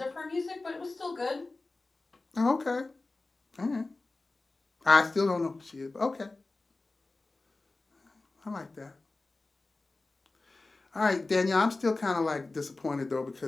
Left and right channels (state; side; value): quieter; right; 3.3 dB